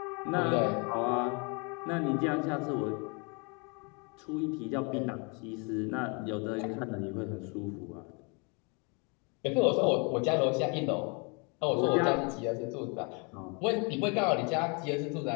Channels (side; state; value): right; quieter; 33.5 dB